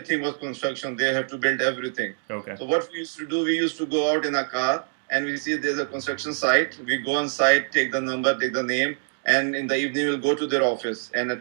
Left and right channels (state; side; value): silent; left; digital silence